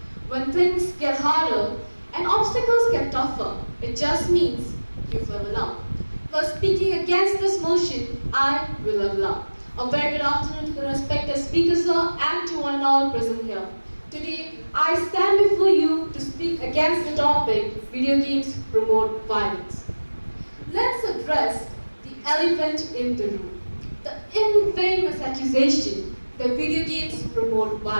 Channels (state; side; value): inverted; both; correlation -1.00